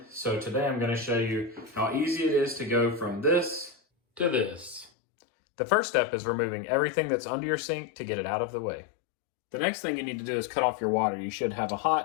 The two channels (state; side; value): drops out; right; at 4.9 s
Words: So today I'm going to show you how easy it is to go from this to this. The first step is removing everything that's under your sink to get it out of the way. The next thing you need to do is cut off your water. You should have a